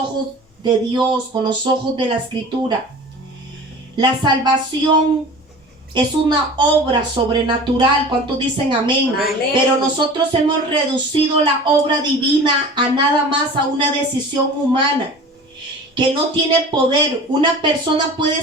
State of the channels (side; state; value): both; normal; correlation 0.39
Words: de Dios, con los ojos de la Escritura. La salvación es una obra sobrenatural. ¿Cuántos dicen amén? Amén. Pero nosotros hemos reducido la obra divina a nada más a una decisión humana que no tiene poder. Una persona